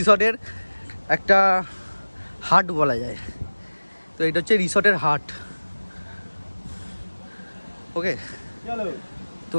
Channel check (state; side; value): inverted; both; correlation -1.00